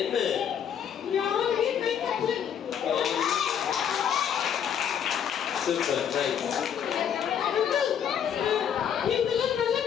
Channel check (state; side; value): quieter; right; 8.6 dB